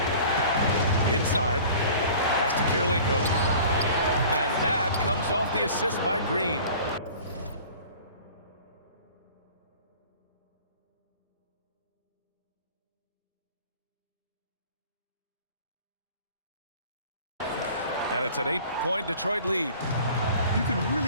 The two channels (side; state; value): both; inverted; correlation -0.45